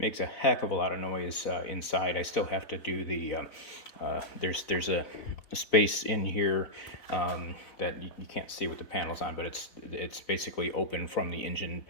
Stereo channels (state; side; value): late; right; 4.0 ms